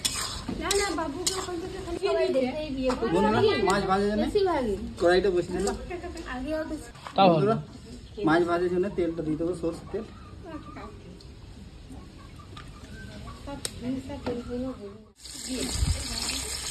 বন্ধুরা মাছ ভাজার জন্য কড়াইটা বসিয়ে দিলাম। বন্ধুরা মাছ ভাজার জন্য তেলটা দিয়ে দেবো, সরষের তেল।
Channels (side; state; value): both; identical; correlation 1.00